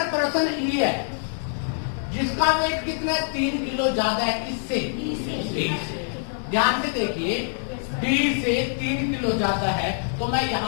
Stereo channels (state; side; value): silent; right; 62 dB below the other